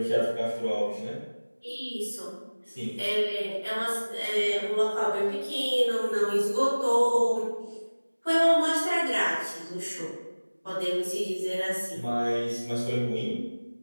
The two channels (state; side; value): inverted; both; correlation -1.00